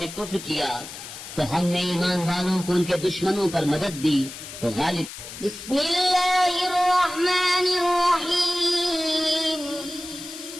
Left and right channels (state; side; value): noise; left; hiss, 12 dB below the sound